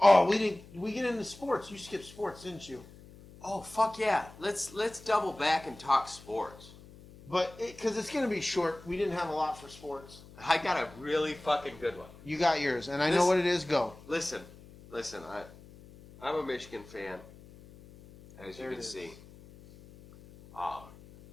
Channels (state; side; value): noise; left; hum, 20 dB below the sound